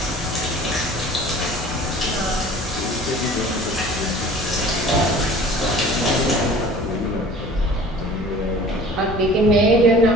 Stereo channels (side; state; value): both; normal; correlation 0.45